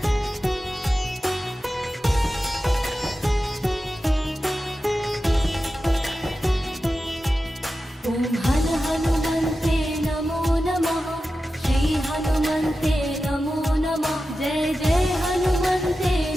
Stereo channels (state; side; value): normal; both; correlation 0.92